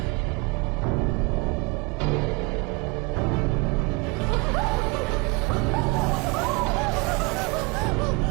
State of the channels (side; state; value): left; quieter; 27.3 dB